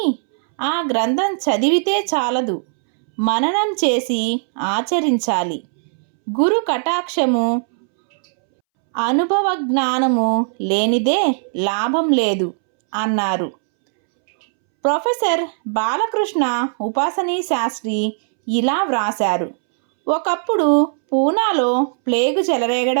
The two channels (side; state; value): left; silent; 66 dB below the other